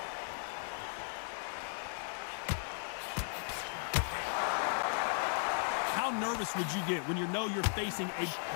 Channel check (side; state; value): right; silent; digital silence